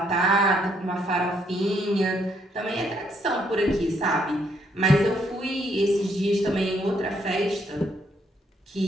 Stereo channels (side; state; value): both; normal; correlation 0.71